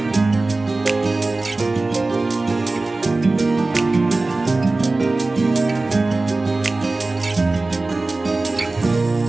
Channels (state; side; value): quieter; left; 3.2 dB